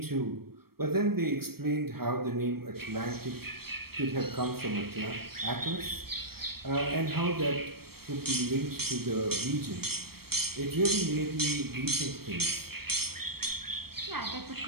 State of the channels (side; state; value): left; late; 0.95 ms